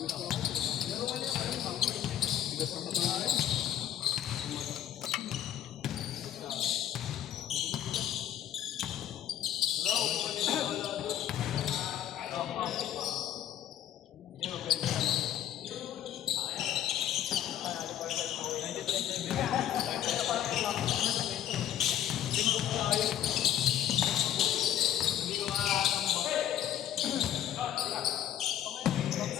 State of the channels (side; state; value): right; quieter; 11.1 dB